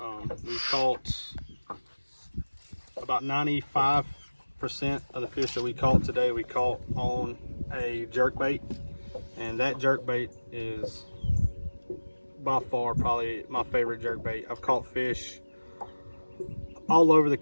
We caught about 95% of the fish that we caught today. We caught on a jerk bait. And that jerk bait is by far probably my favorite jerk bait. I've caught fish all over the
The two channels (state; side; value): inverted; both; correlation -1.00